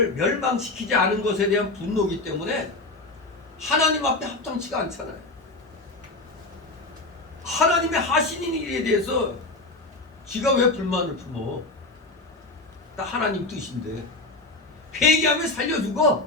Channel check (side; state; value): right; quieter; 3.1 dB